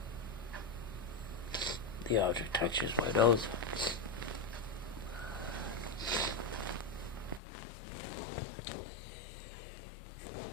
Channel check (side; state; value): right; drops out; at 7.4 s